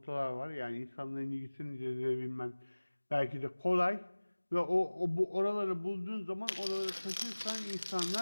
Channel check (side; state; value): both; inverted; correlation -1.00